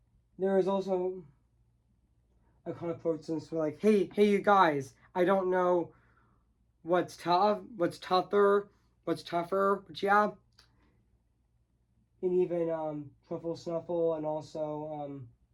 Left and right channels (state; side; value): identical; both; correlation 1.00